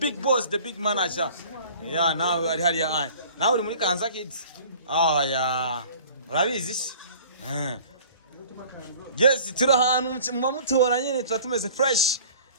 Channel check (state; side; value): inverted; both; correlation -0.47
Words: boss, the big manager. Yeah, now ari hali ya. Now uri muri KAYANZA Kids. Oh yeah. Urabizi? Yes, turi ahantu mutora nyine turatumeze fresh.